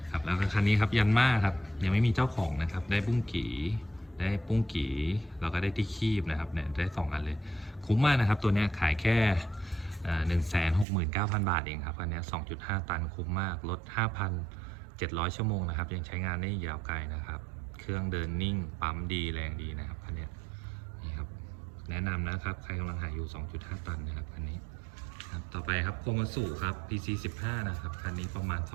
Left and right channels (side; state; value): left; drops out; at 10.9 s